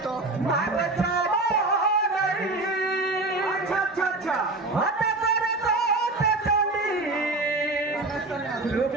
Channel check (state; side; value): quieter; left; 3.1 dB